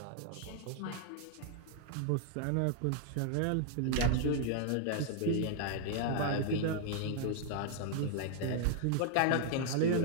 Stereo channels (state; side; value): different; both; correlation 0.00